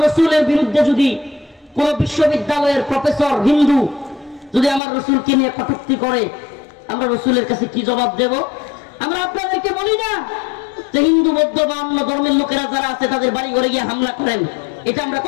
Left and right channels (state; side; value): drops out; right; at 4.8 s